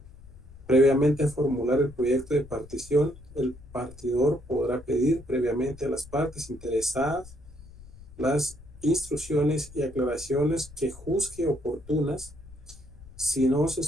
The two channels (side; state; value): left; noise; rumble, 19 dB below the sound